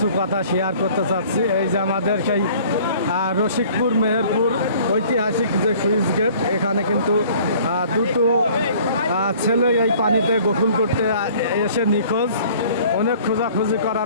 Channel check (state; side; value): inverted; both; correlation -0.52